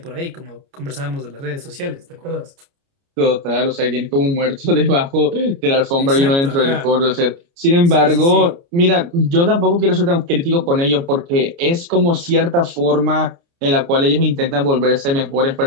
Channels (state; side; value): late; left; 29 ms